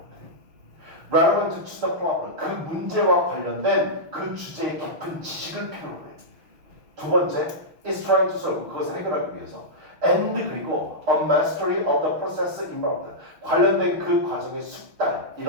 Relevant to the problem, 그 문제와 관련된 그 주제의 깊은 지식을 필요로 해. 두 번째, is trying to solve, 그것을 해결하기 위해서. And 그리고 a mastery of the process involved, 관련된 그 과정의 숙달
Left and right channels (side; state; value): left; late; 6.2 ms